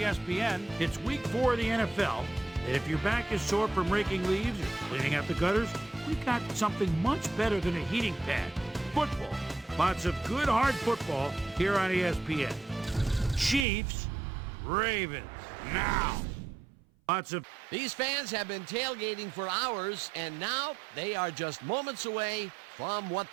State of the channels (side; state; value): left; drops out; at 13.7 s